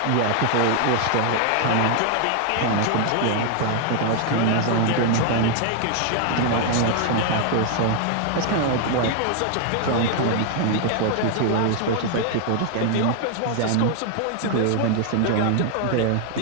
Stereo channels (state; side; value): different; both; correlation 0.00